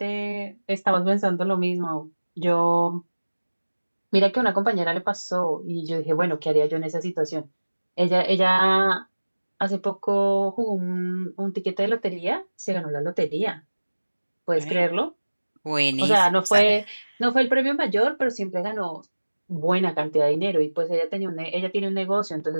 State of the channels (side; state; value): both; inverted; correlation -1.00